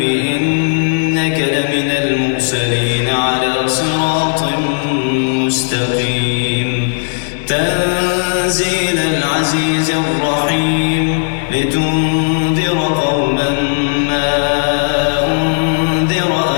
إنك لمن المرسلين على صراط مستقيم تنزيل العزيز الرحيم لتنذر قوما ما أنذر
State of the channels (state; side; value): silent; right; digital silence